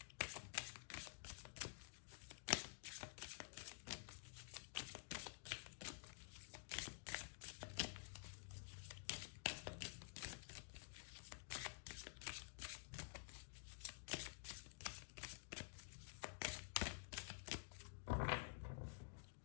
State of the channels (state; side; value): silent; right; digital silence